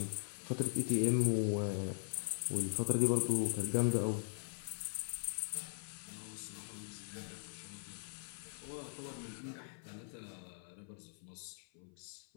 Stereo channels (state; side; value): silent; right; 51 dB below the other